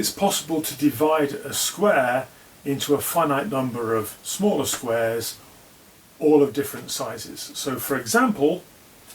possible to divide a square into a finite number of smaller squares, all of different sizes. So for example,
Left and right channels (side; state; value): both; identical; correlation 1.00